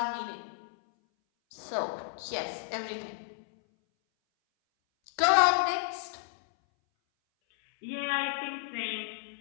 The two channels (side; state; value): right; silent; 57 dB below the other